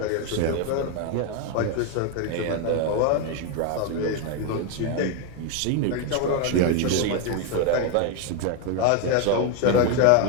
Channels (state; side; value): different; both; correlation 0.01